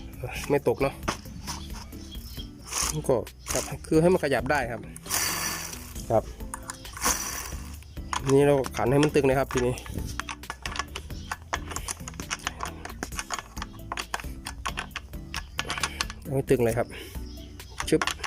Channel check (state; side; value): identical; both; correlation 1.00